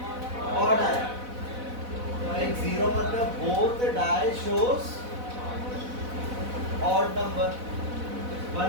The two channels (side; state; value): left; late; 4.0 ms